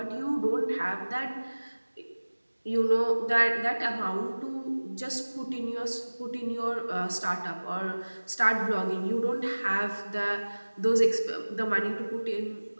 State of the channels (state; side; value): inverted; both; correlation -1.00